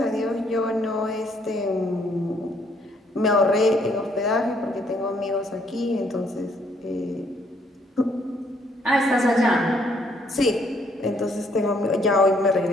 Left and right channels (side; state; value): both; normal; correlation 0.68